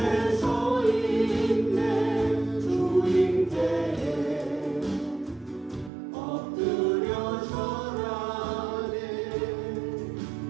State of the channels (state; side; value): drops out; left; at 5.9 s